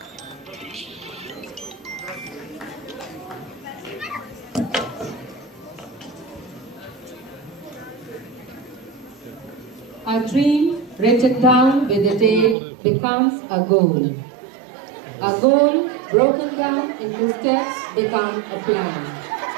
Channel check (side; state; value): left; drops out; at 12.6 s